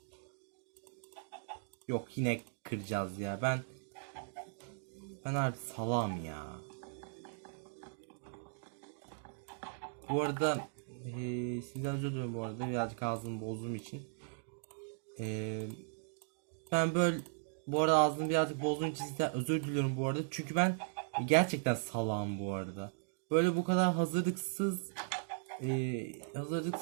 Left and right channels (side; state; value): left; silent; digital silence